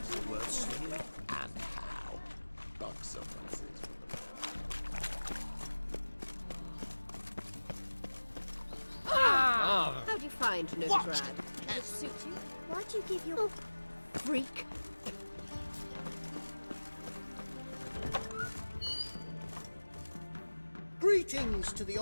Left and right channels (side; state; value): both; inverted; correlation -1.00